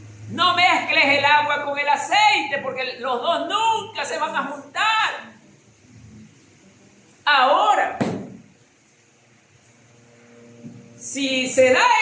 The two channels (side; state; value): both; identical; correlation 1.00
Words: No mezcles el agua con el aceite, porque los dos nunca se van a juntar. Ahora, si se da